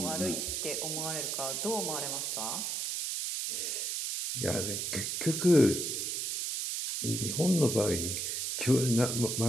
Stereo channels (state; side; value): noise; right; hiss, 1 dB below the sound